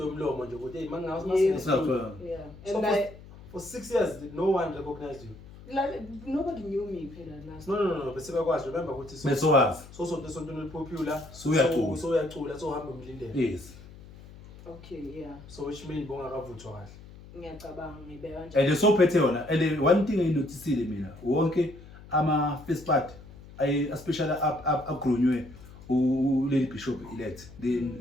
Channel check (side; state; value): left; noise; hum, 18 dB below the sound